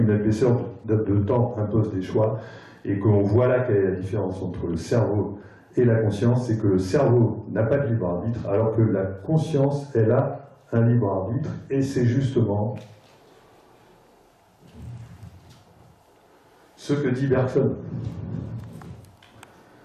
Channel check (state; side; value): identical; both; correlation 1.00